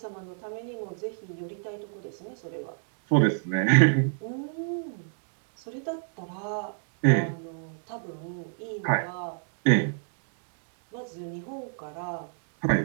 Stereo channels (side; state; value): left; silent; digital silence